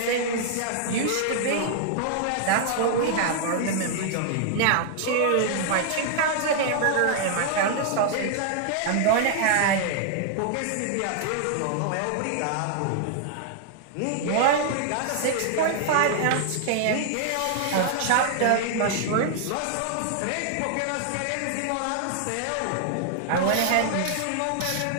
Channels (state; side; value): different; both; correlation 0.00